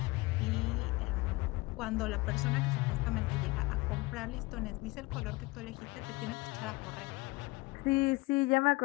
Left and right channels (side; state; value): right; quieter; 22.1 dB